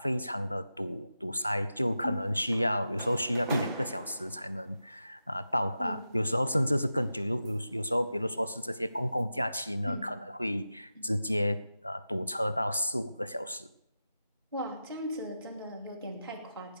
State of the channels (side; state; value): both; inverted; correlation -0.91